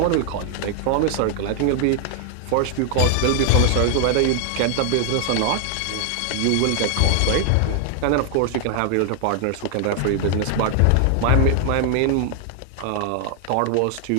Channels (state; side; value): different; both; correlation 0.00